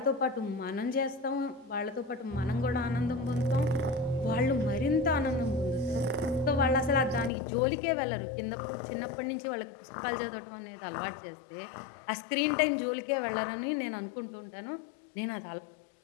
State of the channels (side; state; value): right; drops out; at 7.3 s